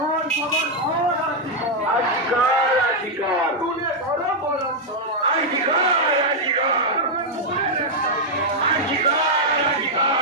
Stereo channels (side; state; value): both; normal; correlation -0.02